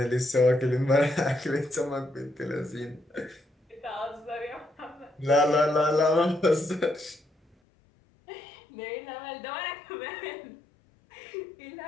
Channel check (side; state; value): right; drops out; at 7.6 s